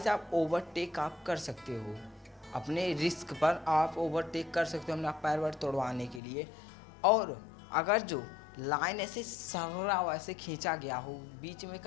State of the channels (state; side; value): drops out; right; at 6.2 s